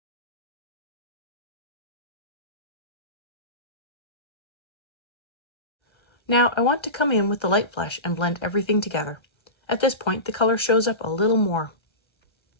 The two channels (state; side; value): late; right; 1.3 ms